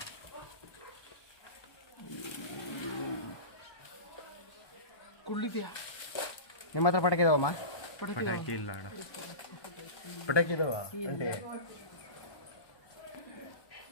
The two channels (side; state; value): right; late; 1.2 ms